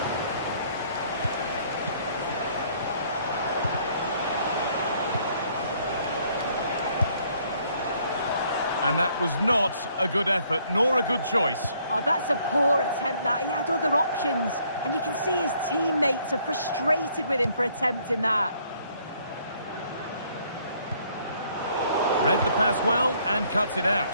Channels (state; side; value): inverted; both; correlation -0.65